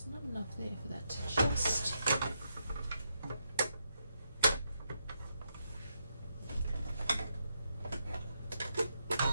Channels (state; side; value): inverted; both; correlation -0.81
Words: not enough there for that to just